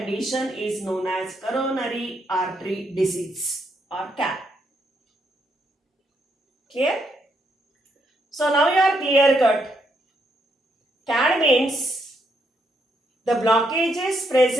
is known as coronary artery disease or CAR. Clear? So now you are clear cut. CAD means the blockages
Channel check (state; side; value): normal; both; correlation 0.76